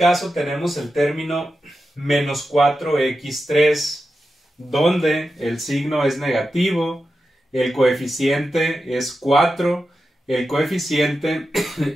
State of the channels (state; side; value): normal; both; correlation 0.90